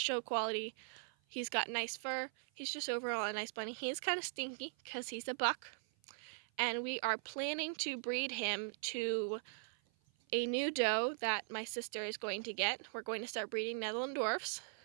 quality. He's got nice fur. He's just overall a nice bunny. He is kind of stinky because he's a buck. And we are planning to breed him to a new doe that my sister is going to get. We're going to start breeding Netherlanddorfs.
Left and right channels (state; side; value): silent; left; 51 dB below the other